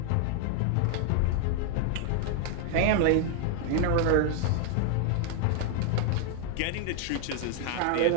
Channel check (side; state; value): both; different; correlation 0.00